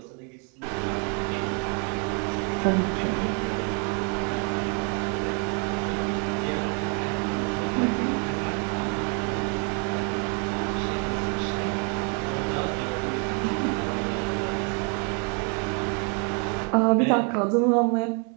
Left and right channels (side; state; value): left; quieter; 37.3 dB